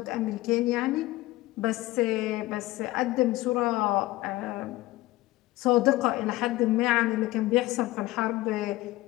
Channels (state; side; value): quieter; right; 18.1 dB